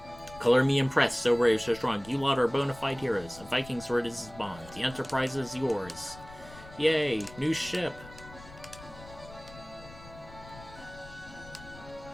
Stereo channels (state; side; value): noise; left; rumble, 18 dB below the sound